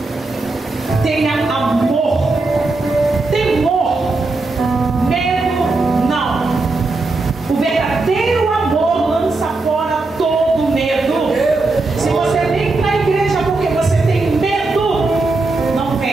Tenha amor, temor, medo não. O verdadeiro amor lança fora todo medo. Se você vem para a igreja porque você tem medo, não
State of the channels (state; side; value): quieter; left; 3.4 dB